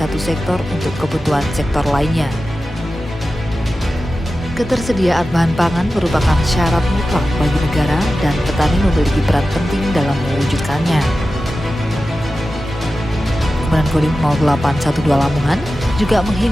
sektor untuk kebutuhan sektor lainnya. Ketersediaan bahan pangan merupakan syarat mutlak bagi negara dan petani memiliki peran penting dalam mewujudkannya. Komandan Kodim 0812 Lamongan juga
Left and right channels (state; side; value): normal; both; correlation 0.94